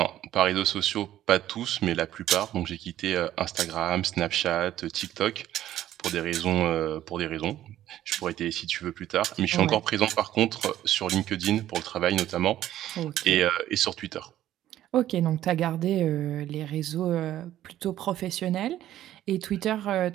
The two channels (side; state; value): left; quieter; 12.8 dB